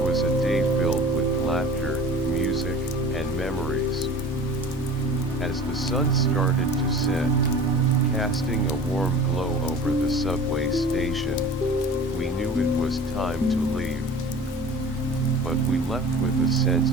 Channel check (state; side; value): normal; both; correlation 0.40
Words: was a day filled with laughter, music, and memories. As the sun started to set, casting a warm glow over the subway station, we knew it was time to leave. But we left with a sense